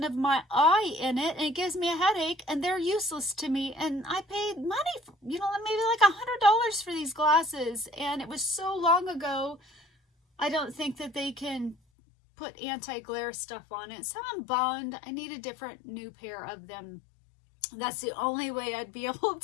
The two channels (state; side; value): drops out; right; at 11.8 s